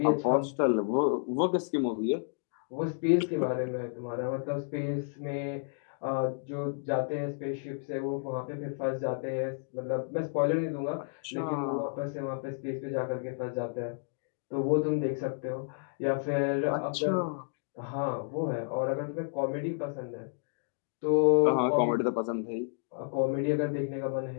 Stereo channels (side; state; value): right; silent; digital silence